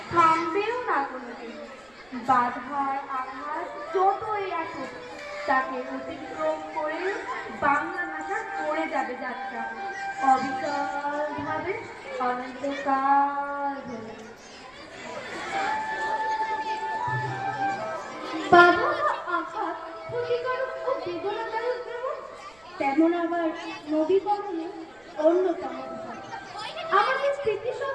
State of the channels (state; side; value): noise; right; rumble, 30 dB below the sound